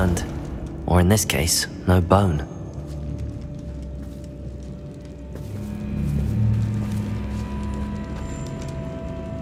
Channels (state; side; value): identical; both; correlation 1.00